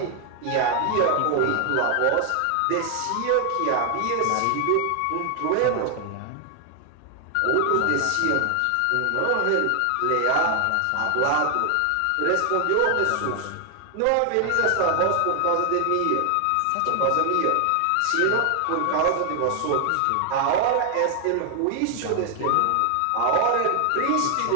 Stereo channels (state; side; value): different; both; correlation 0.00